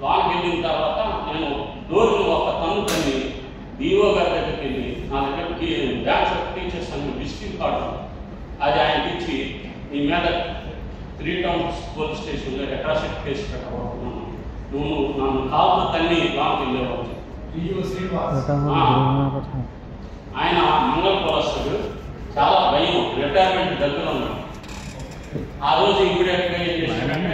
వెళ్ళిన తర్వాత నేను డోర్ని ఒక తన్ను తన్ని డిఓ గారి దగ్గరికి వెళ్ళి నా దగ్గరికి బ్యాంక్ ఆఫ్ టీచర్స్ అని విజిటింగ్ కార్డు అది ఆయనకి ఇచ్చి నీ మీద 3 టౌన్స్ పోలీస్ స్టేషన్లో అట్రాసిటీ కేసు పెట్టబోతున్నాను, నువ్వు నన్ను కాదు తన్ని లాంగ్ వెళ్ళేవాడు. ఆయన మంగళ కులస్తుడు, చాలా భయం, రిటైర్మెంట్ దగ్గర ఉన్నాడు. ఆ రోజు ఇమీడియట్గా ఏం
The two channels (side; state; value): both; identical; correlation 1.00